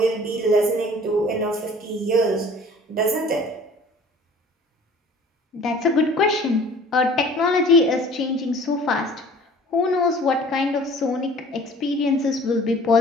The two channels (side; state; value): both; normal; correlation 0.48